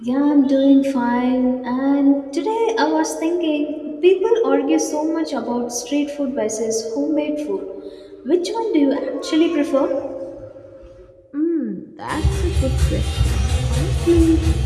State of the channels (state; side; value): identical; both; correlation 1.00